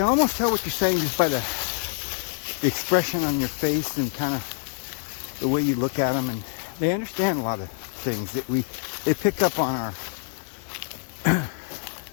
almost tell what you're saying just by the expression on your face and kind of the way you look at them. And they understand a lot of things that they pick up on our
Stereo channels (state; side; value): silent; right; 61 dB below the other